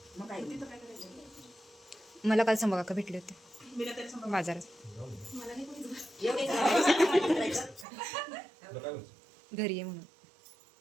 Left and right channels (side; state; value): left; drops out; at 7.9 s